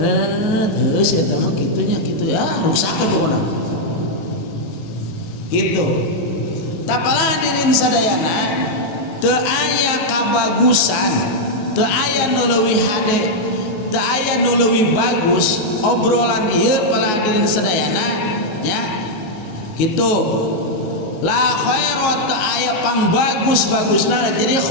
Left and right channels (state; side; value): late; right; 19 ms